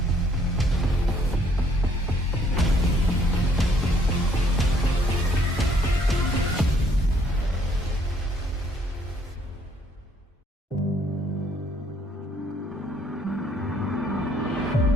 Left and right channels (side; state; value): both; normal; correlation 0.65